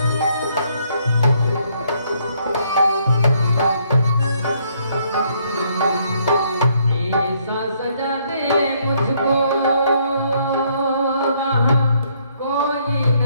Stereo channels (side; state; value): both; inverted; correlation -0.69